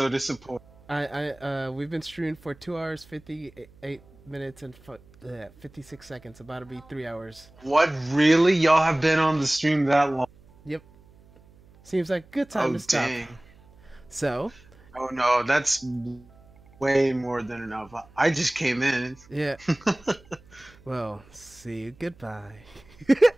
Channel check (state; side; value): noise; right; hum, 26 dB below the sound